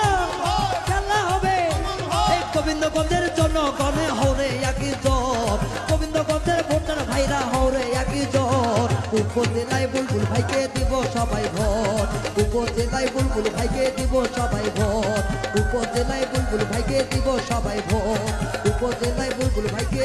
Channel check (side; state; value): both; identical; correlation 1.00